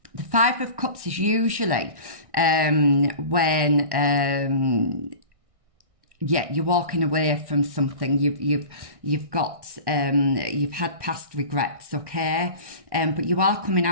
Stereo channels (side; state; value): left; late; 1.6 ms